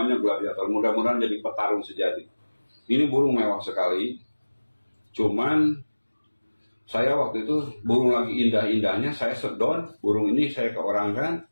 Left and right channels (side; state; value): both; inverted; correlation -1.00